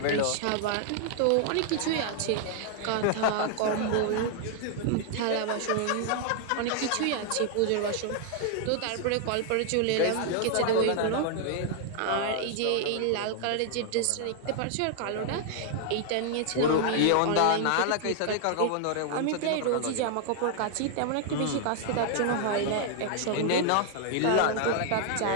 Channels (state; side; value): different; both; correlation 0.00